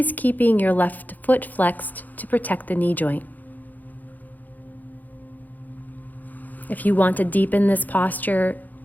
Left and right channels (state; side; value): late; right; 0.083 ms